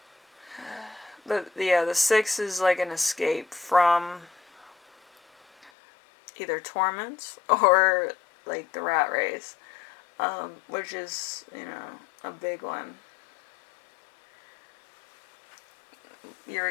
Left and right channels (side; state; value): right; drops out; at 5.7 s